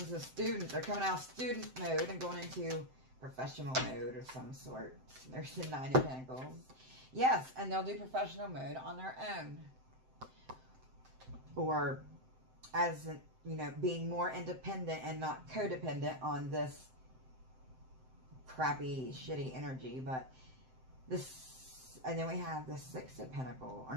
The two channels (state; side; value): late; left; 7.7 ms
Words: a student. They're coming out of student mode and going into professional mode of some sort. There's the Nine of Pentacles. Yes, and they'll do professional mode on their own. Or as, you know, being more independent and not codependent on this crappy, shitty energy. But this, and then we have the Six of Pentacles. Or